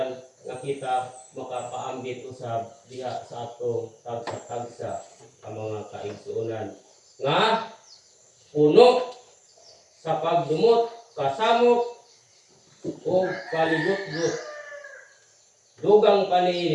nga kita makapaambit usab diha sa atong tagsa-tagsa ang mga kaigsuonan nga puno sa pagdumot, kasamok, o kalibot-gut. Dugang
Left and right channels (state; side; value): identical; both; correlation 1.00